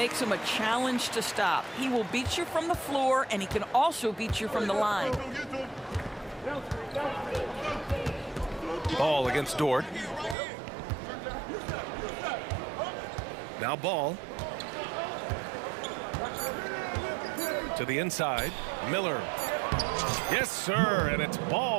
him a challenge to stop. He will beat you from the floor, and he can also beat you from the line. Ball against Dort. Now Ball. To the inside. Miller. Yes, sir. And it's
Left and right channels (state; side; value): drops out; left; at 10.4 s